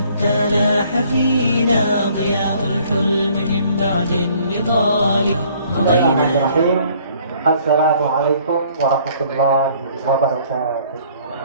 لاح فينا ضياء الحلم من بعد النضال. Assalamualaikum warahmatullahi wabarakatuh.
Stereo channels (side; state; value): both; inverted; correlation -0.59